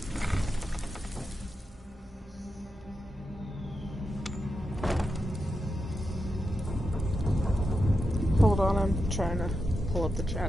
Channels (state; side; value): normal; both; correlation 0.88